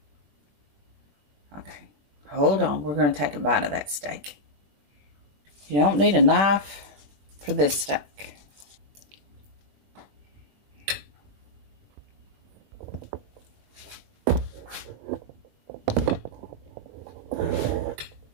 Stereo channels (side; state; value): left; late; 21 ms